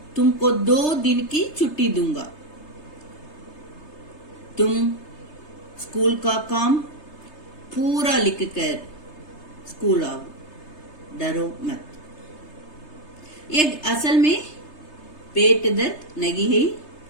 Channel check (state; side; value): late; right; 3.3 ms